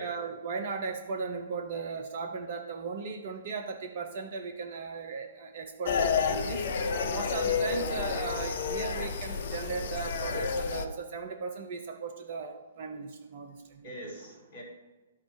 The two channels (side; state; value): both; inverted; correlation -0.52